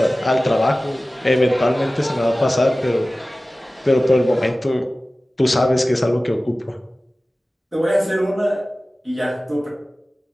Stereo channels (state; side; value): normal; both; correlation 0.97